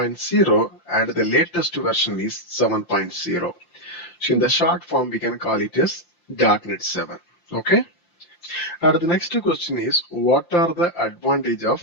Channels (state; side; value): late; right; 5.8 ms